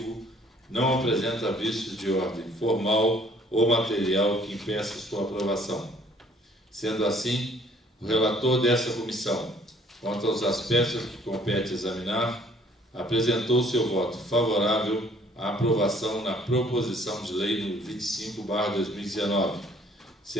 não apresenta vícios de ordem formal ou material que impeça sua aprovação. Sendo assim, o relator dessa comissão, quanto aos aspectos que compete examinar, apresentou seu voto favorável à aprovação na proposição de lei número 25/2019,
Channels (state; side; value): normal; both; correlation 0.59